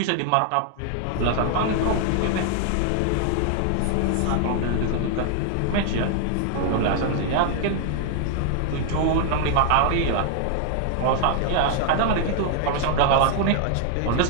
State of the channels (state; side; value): different; both; correlation 0.00